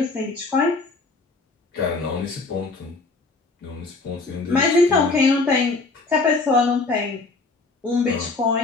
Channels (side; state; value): right; quieter; 3.7 dB